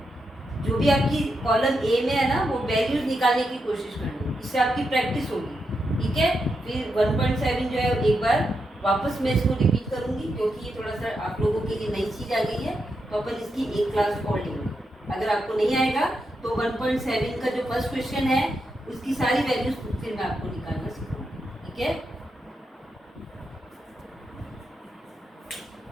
जो भी आपकी कॉलम ए में है ना वो वैल्यूज निकालने की कोशिश करनी, इससे आपकी प्रैक्टिस होगी, ठीक है। फिर 1.7 जो है एक बार वापस मैं इसको रिपीट करूंगी क्योंकि ये थोड़ा सा आप लोगों के लिए नई चीज़ आ गई है, तो अपन इसकी एक क्लास और लेंगे। अगर आपको नहीं आएगा तो 1.7 का जो फर्स्ट क्वेश्चन है उसकी सारी वैल्यूज फिर मैं आपको निकालना सिखाऊंगी, ठीक है।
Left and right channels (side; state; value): both; normal; correlation 0.85